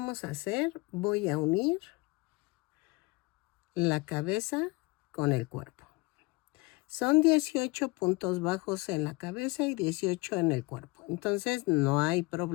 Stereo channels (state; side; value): quieter; right; 25.1 dB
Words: a hacer? Voy a unir la cabeza con el cuerpo. Son 18 puntos bajos en la cabeza y 18 en el cuerpo. Entonces, no hay